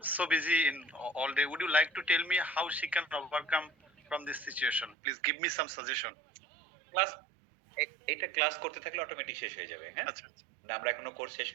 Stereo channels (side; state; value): left; drops out; at 5.0 s